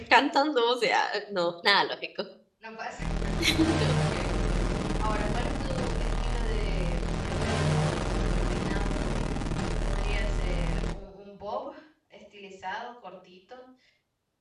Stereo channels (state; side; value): identical; both; correlation 1.00